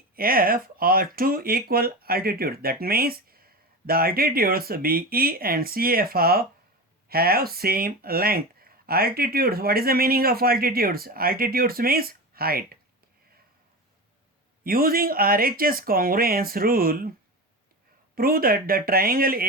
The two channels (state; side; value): normal; both; correlation 0.25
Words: are two equal altitudes. That means the altitudes BE and CF have same length. Altitudes, what is the meaning of altitudes? Altitudes means height. Using RHS congruence rule, prove that the triangle